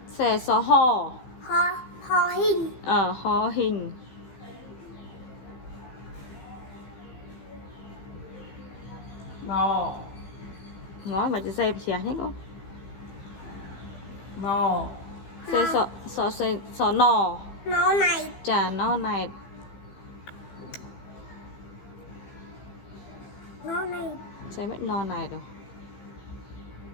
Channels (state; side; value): late; right; 15 ms